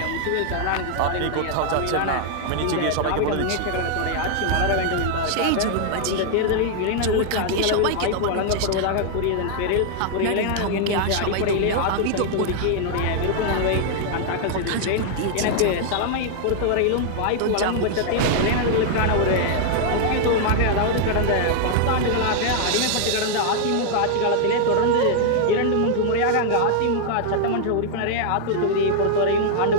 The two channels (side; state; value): both; different; correlation 0.00